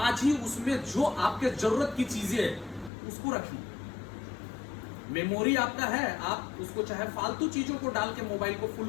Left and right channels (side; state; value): right; drops out; at 2.9 s